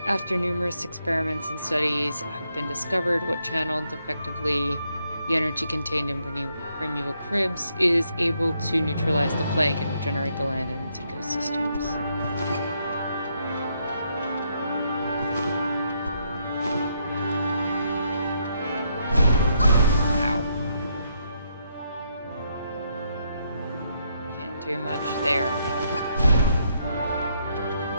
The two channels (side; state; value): both; inverted; correlation -0.76